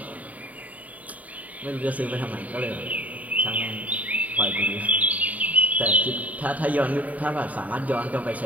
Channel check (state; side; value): late; left; 0.072 ms